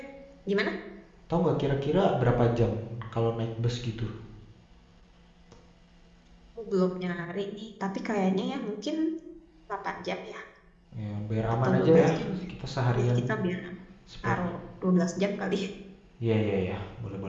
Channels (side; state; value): both; identical; correlation 1.00